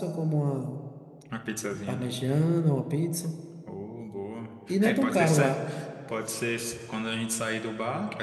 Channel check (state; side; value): identical; both; correlation 1.00